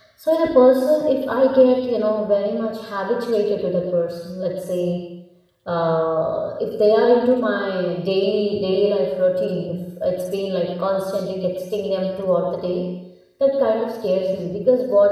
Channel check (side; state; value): both; identical; correlation 1.00